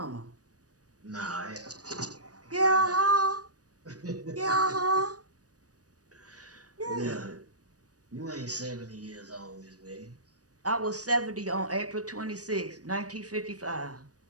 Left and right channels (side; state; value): left; late; 0.67 ms